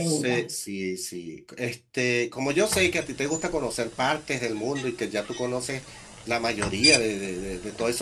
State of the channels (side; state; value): both; identical; correlation 1.00